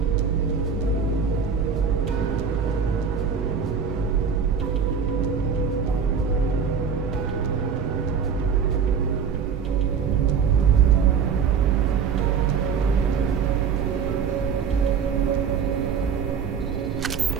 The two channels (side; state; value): left; quieter; 6.6 dB